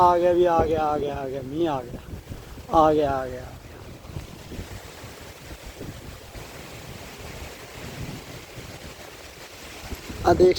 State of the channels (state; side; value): identical; both; correlation 1.00